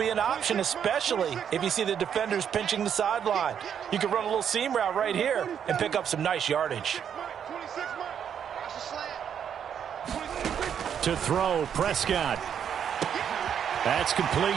an option, especially if you see the defenders pinching the sideline. You can run a little seam route right here and pick up some nice yardage. To throw, Prescott. That's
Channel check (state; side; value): quieter; left; 8.4 dB